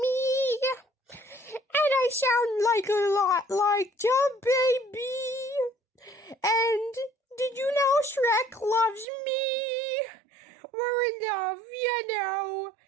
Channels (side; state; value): left; drops out; at 9.1 s